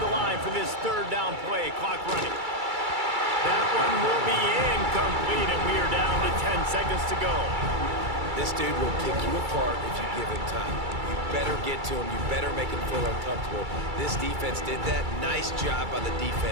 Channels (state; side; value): late; left; 2.3 ms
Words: the line for this third down play. Clock running. That one will be incomplete, and we are down to 10 seconds to go. This dude will pick you apart if you give him time. You better get to him. You better make him feel uncomfortable. This defense did that. Nice job by the